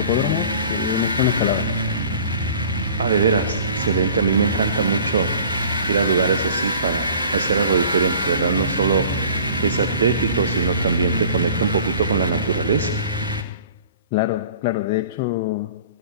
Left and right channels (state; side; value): inverted; both; correlation -0.47